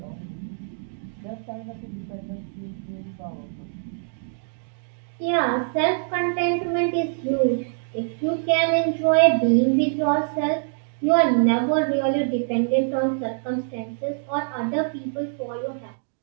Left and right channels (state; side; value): silent; left; digital silence